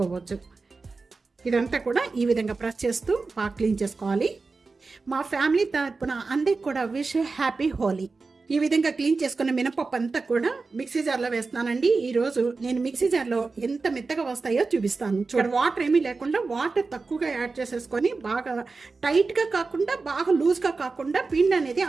ఇదంతా కూడా ఈ విధంగా ప్రెస్ చేస్తూ బాగా క్లీన్ చేసుకోవాలి. మా ఫ్యామిలీ తరపున అందరికి కూడా విష్ హ్యాపీ హోలీ. ఈ విధంగా క్లీన్ చేసుకున్న మినపప్పు అంతా కూడా మిక్సీ జార్లో వేస్తున్నానండి. ఈరోజు నేను మిక్సీ జార్లో ఎంత మెత్తగా వస్తాయో చూపిస్తాను. చూడండి, వాటర్ ఏమీ లేకుండా వాటర్ తక్కువగా యాడ్ చేసేసుకొని బాగా టైట్గా కాకుండా బాగా లూజ్గా కాకుండా పిండి అనేది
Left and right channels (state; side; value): quieter; left; 4.1 dB